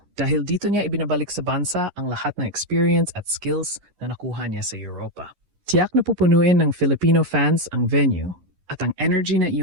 dahil dito niya ibinabalik sa bansa ang lahat ng experience at skills na nakuha niya sa Europa. Tiyak na pupunuin ng Filipino fans ang venue at ang energy na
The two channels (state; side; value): late; left; 11 ms